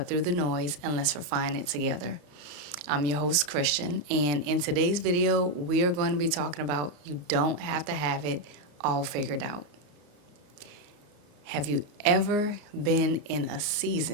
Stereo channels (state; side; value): late; left; 34 ms